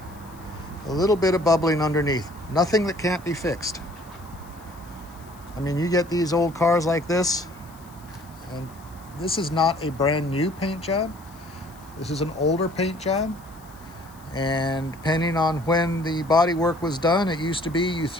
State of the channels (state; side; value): noise; left; hiss, 26 dB below the sound